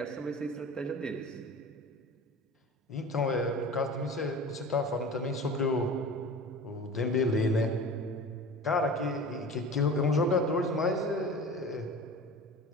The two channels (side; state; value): both; normal; correlation 0.37